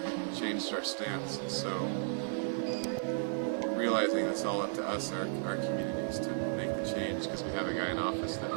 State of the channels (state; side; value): silent; left; 55 dB below the other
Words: changed our stance, and so realizing it's all up to us, our communities, to make the change, because we have a guy in office that